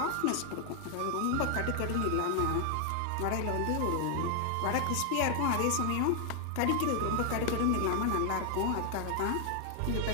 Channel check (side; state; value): both; different; correlation 0.00